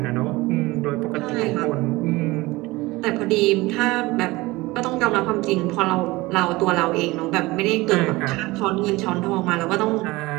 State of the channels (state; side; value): quieter; left; 20.9 dB